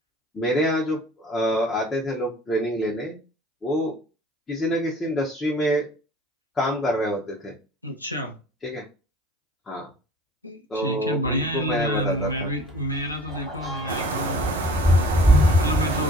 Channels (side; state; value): both; normal; correlation 0.48